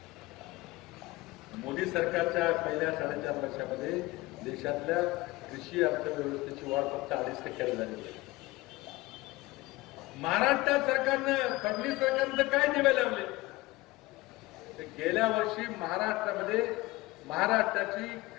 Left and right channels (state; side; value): quieter; right; 19.8 dB